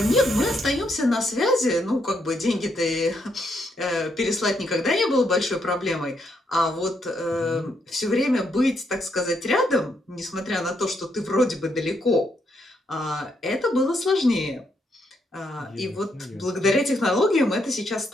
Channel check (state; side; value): normal; both; correlation 0.77